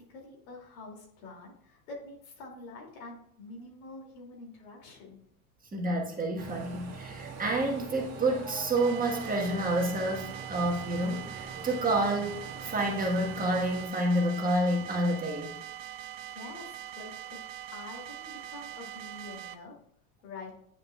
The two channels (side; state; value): both; normal; correlation 0.46